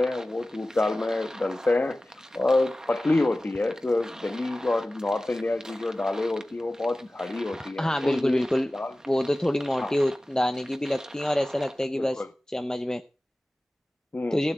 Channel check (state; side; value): normal; both; correlation 0.97